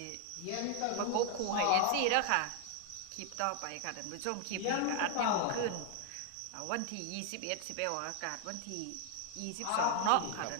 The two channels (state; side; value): different; both; correlation 0.00